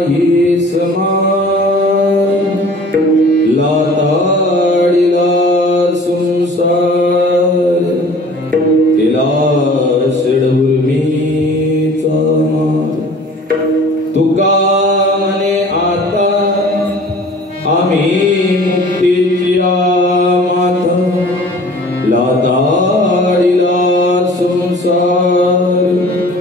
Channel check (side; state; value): both; normal; correlation 0.47